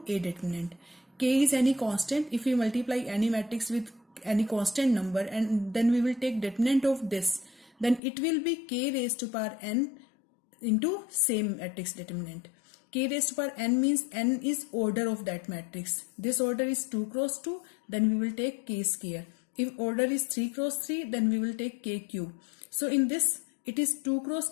A determinant. K is any constant. If we multiply any matrix with any constant number and then we will take determinant of this, then it will be K raised to power n into same matrix determinant. K raised to power n means n is order of that matrix. This order is 2 cross 2, then we will take K square. If order is 3 cross 3, then we will take K cube. So in this, it is 2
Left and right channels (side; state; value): right; drops out; at 8.0 s